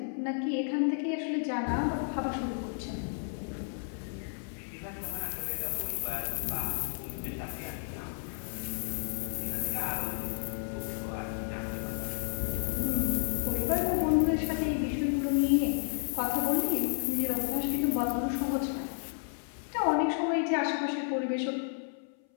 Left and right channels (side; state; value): right; silent; 57 dB below the other